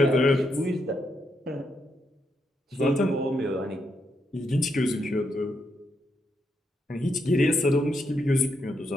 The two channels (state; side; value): normal; both; correlation 0.80